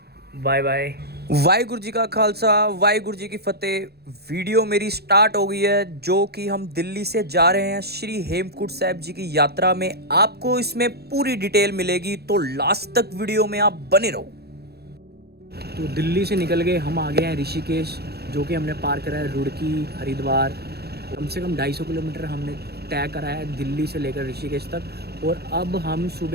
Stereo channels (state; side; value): late; left; 0.47 ms